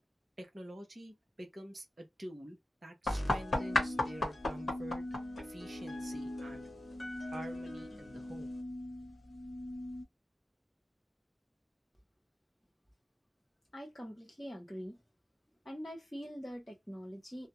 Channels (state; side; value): normal; both; correlation 0.92